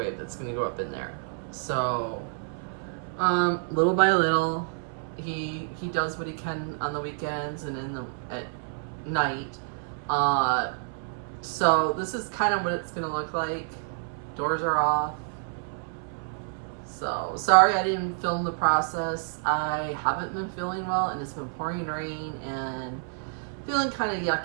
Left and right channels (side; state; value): left; silent; 58 dB below the other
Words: that's going to go up in there. So, little by little, he does what he can on the weekends and at night. So this is kind of what it's going to look like. Doors are off. So, sorry I didn't film the process. I haven't been feeling well and it's been pouring rain and feeling kind of